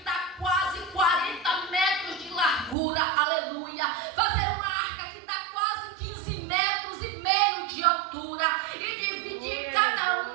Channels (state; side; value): drops out; left; at 2.8 s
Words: quase 40 metros de largura, aleluia. Fazer uma arca que dá quase 15 metros e meio de altura e dividir cada